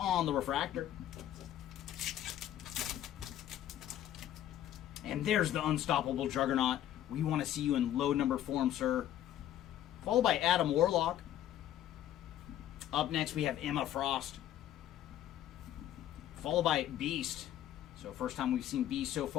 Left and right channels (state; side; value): quieter; right; 11.9 dB